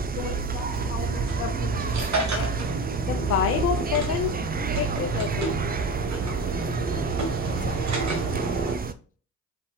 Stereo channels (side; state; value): both; normal; correlation 0.28